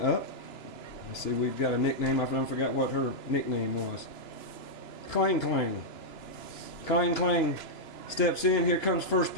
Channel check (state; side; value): late; right; 2.9 ms